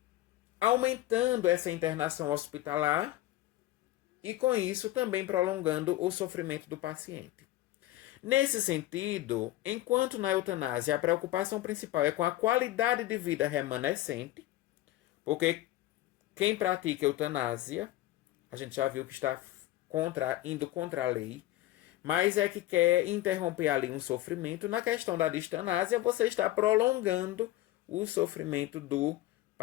aumentando essa internação hospitalar e, com isso, também prolongando o sofrimento do paciente. Nesse sentido, enquanto na eutanásia a preocupação principal é com a qualidade de vida remanescente, porque quem pratica eutanásia, a gente já viu que está indo contra a lei, mas é que quer interromper ali um sofrimento. Na questão da distanásia, você está prolongando o sofrimento do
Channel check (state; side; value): quieter; right; 15.7 dB